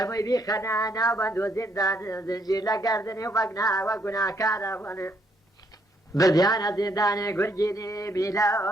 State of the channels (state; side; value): normal; both; correlation 0.71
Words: بیخەنە ناو بەند و زیندان زنجیر لە گەردنی و بەگناوە گوناکارە بوونێ بردیانە زیندانێ گورگینی